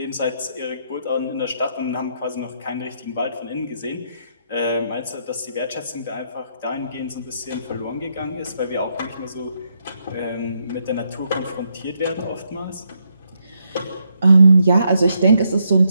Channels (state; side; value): inverted; both; correlation -0.78